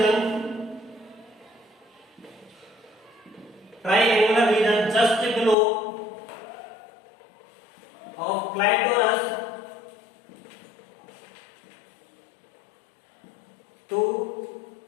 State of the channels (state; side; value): drops out; right; at 5.6 s